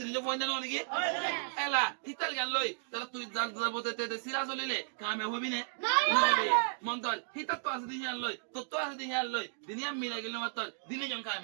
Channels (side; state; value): left; silent; digital silence